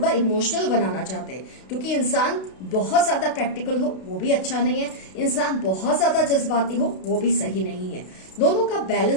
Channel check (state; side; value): late; right; 32 ms